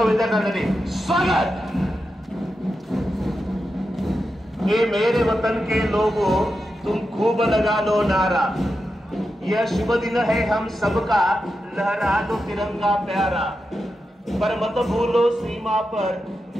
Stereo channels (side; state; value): both; normal; correlation 0.89